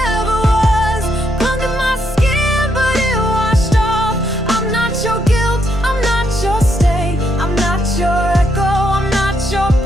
was. Clung to my skin, but it washed off. I'm not your guilt, I'm not your stain. I'm not your echo, I'm not your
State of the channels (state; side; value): normal; both; correlation 0.77